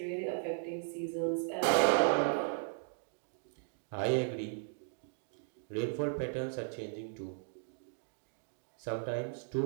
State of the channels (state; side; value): silent; left; digital silence